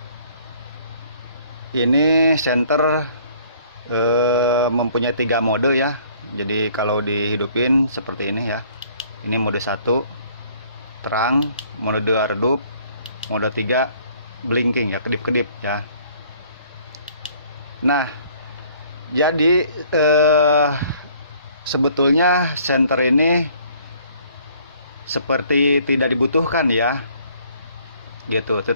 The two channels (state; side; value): inverted; both; correlation -0.59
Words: Ini center mempunyai 3 mode ya. Jadi kalau dihidupin seperti ini ya. Ini mode 1 terang, mode 2 redup, mode 3 blinking ya, kedip-kedip ya. Nah, jadi sebetulnya senter ini seperti tidak dibutuhkan ya, gitu.